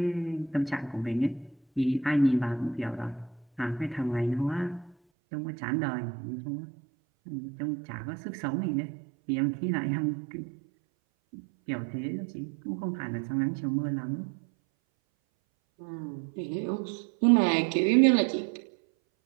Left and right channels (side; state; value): left; drops out; at 5.0 s